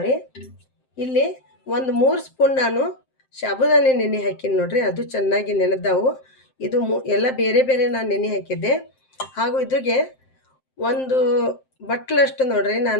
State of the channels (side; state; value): right; late; 7.7 ms